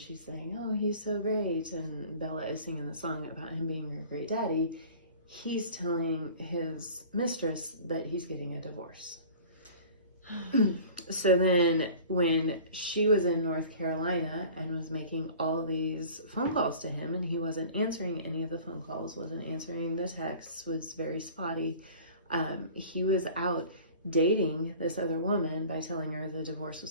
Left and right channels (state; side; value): inverted; both; correlation -0.44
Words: saying, oh, he's so great, and Bella is singing the song about him being a great daddy, he's telling his mistress that he's getting a divorce. So then when she was in North Carolina and was making all these phone calls to him, and he wasn't answering any of the phone calls, wasn't answering the texts, was very spotty, he was out dating this other woman by telling her the divorce